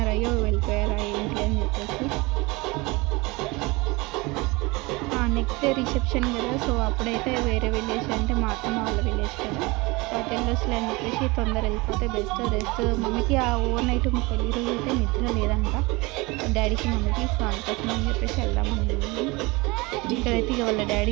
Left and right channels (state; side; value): quieter; left; 24.4 dB